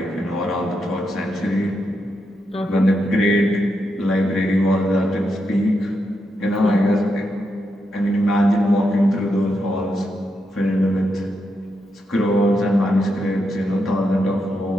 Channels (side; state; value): both; normal; correlation 0.83